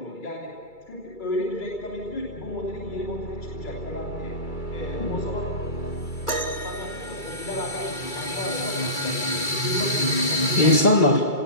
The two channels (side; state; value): right; late; 2.3 ms